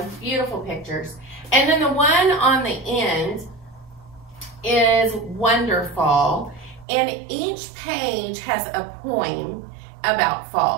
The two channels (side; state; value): left; drops out; at 6.9 s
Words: beautiful pictures. And then the one on the end is Wonderfall, and each page has a poem about